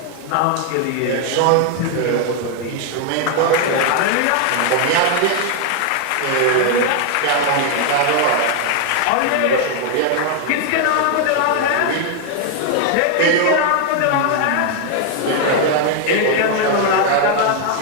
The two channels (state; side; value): different; both; correlation 0.00